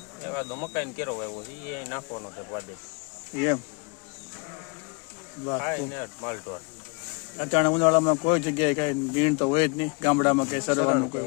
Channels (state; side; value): quieter; right; 31.5 dB